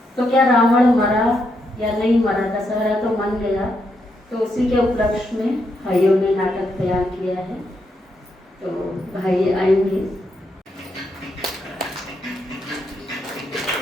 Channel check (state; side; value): normal; both; correlation 0.80